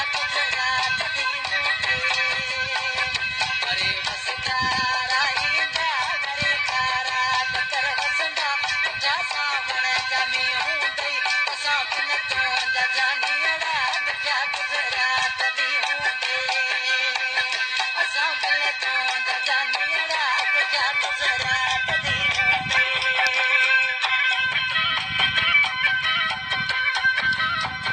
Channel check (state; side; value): identical; both; correlation 1.00